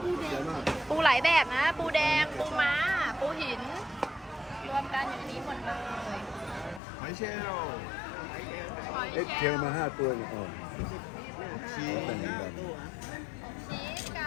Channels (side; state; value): right; drops out; at 6.8 s